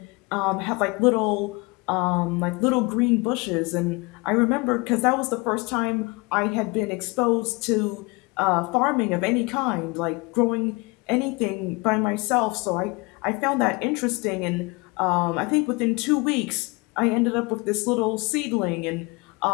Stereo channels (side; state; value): right; quieter; 27.3 dB